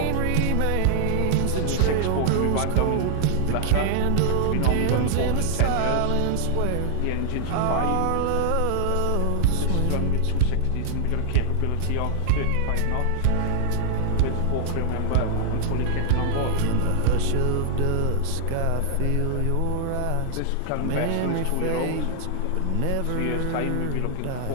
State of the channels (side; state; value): both; different; correlation -0.01